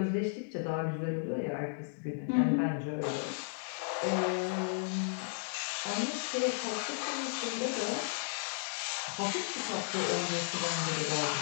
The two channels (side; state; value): right; silent; digital silence